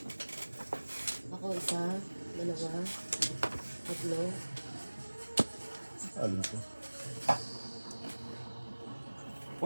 Ako isa, dalawa, tatlo. Alam ko.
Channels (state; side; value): inverted; both; correlation -1.00